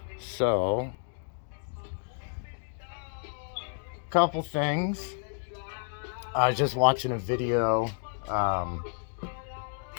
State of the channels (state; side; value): silent; right; 57 dB below the other